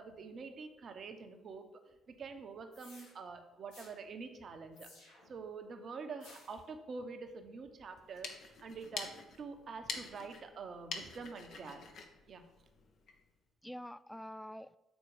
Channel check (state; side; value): normal; both; correlation 0.71